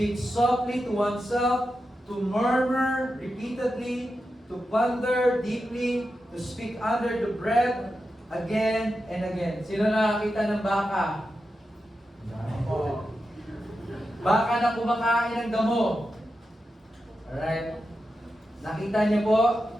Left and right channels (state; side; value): normal; both; correlation 0.90